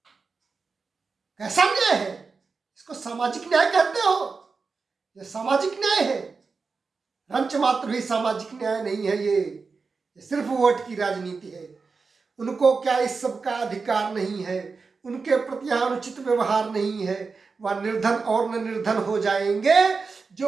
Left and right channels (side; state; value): left; quieter; 4.6 dB